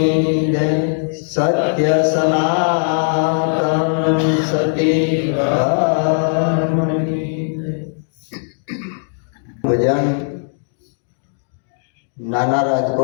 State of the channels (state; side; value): silent; right; digital silence